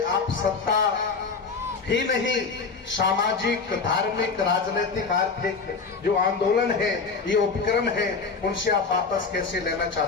आप सत्ता ही नहीं, सामाजिक, धार्मिक, राजनीतिक, आर्थिक जो आंदोलन है, ये उपक्रम है, उनसे आप वापस कैसे लेना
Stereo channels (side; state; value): right; quieter; 4.8 dB